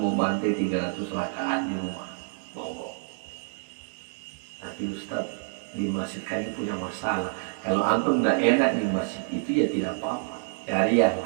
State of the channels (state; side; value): silent; left; 60 dB below the other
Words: bantai 300 rakaat di rumah, monggo. Tapi Ustaz, di masjid kami punya masalah. Kalau antum tidak enak di masjid itu, ya tidak apa-apa, cari yang